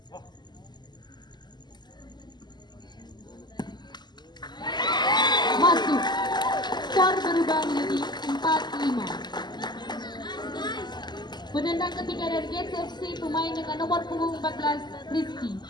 Masuk, skor berubah menjadi 4-5. Penendang ketiga dari Gates FC, pemain dengan nomor punggung 14, Rizky.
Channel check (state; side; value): late; right; 0.21 ms